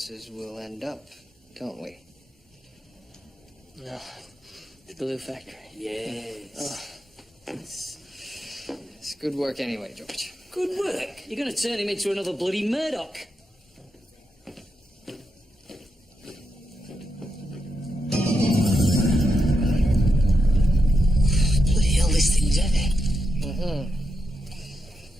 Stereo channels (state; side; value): normal; both; correlation 0.85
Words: will end up, don't we? No. The glue factory. Yes. It's good work anyway, George. Good work. You're going to turn him into another bloody Murdoch. Bloody hell, this thing's heavy.